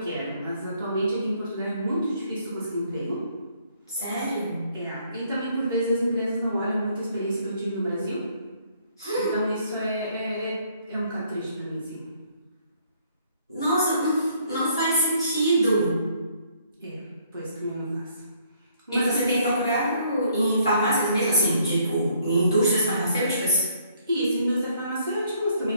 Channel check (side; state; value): both; inverted; correlation -0.66